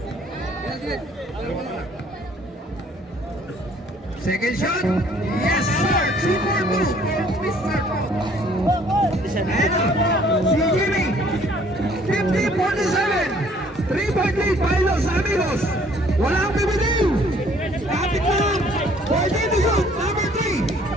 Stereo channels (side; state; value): both; normal; correlation 0.59